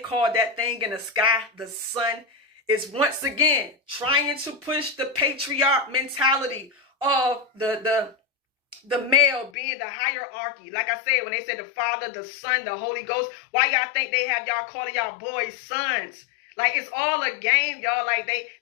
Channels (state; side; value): drops out; right; at 9.5 s